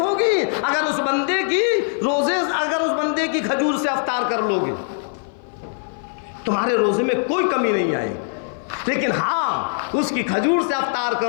अगर उस बंदे की खजूर से अफ्तार कर लोगे, तुम्हारे रोजे में कोई कमी नहीं आएगी। लेकिन हाँ, उसकी खजूर से अफ्तार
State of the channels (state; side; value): silent; right; 55 dB below the other